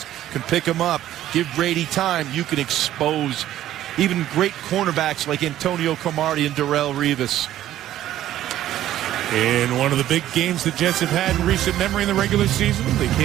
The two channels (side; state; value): left; quieter; 12.9 dB